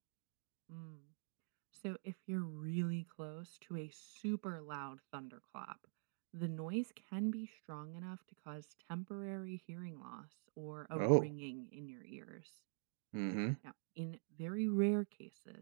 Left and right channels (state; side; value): silent; left; digital silence